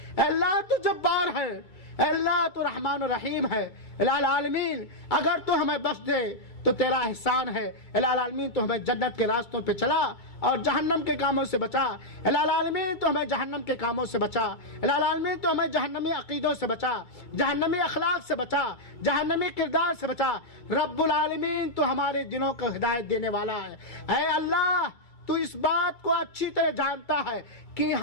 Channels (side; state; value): right; late; 2.3 ms